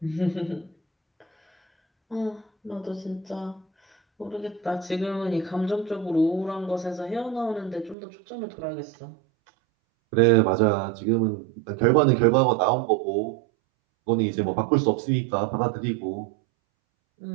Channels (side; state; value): left; drops out; at 8.0 s